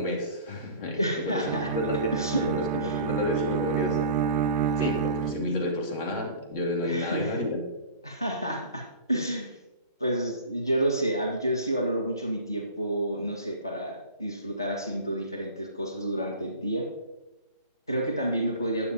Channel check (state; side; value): inverted; both; correlation -0.42